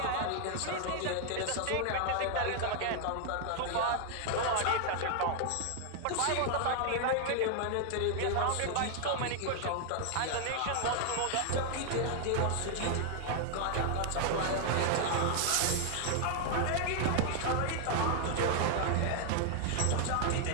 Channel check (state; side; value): different; both; correlation 0.00